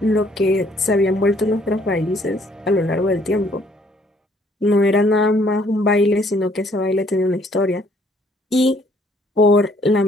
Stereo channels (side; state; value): both; normal; correlation 0.63